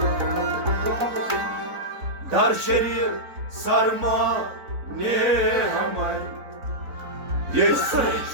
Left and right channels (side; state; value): left; late; 4.0 ms